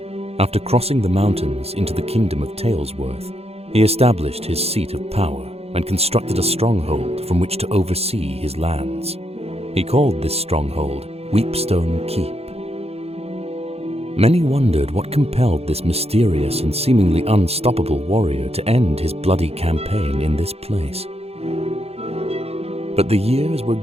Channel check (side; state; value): left; late; 0.29 ms